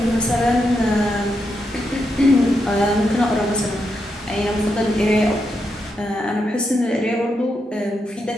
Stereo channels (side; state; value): both; normal; correlation 0.83